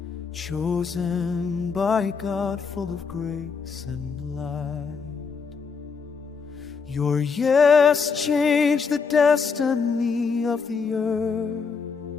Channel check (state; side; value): quieter; right; 5.4 dB